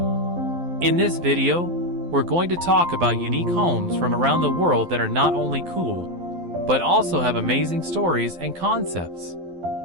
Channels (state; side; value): late; left; 12 ms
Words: In this video, we're going to talk about unique homes from around the world that are not only cool, but also have amazing stories and concepts.